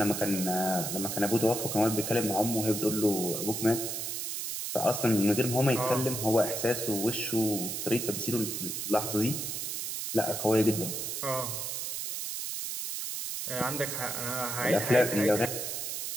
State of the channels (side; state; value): right; noise; hiss, 4 dB below the sound